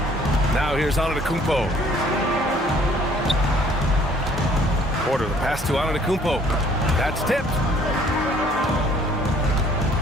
Now here's Antetokounmpo. Porter, the pass to Antetokounmpo. That's tipped.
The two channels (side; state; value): both; normal; correlation 0.58